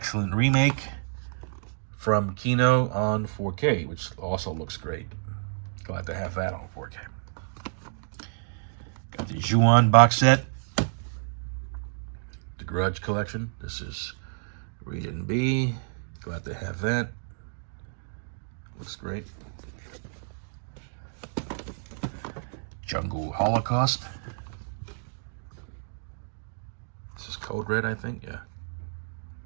remake from Kino on 4K, which also looks great. Glad to have that on 4K. Got the Ju-On box set. The Grudge collection. This is Region B. Glad to have that. Looks great. Jungle Holocaust. This is Code Red, I think.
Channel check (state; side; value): silent; left; digital silence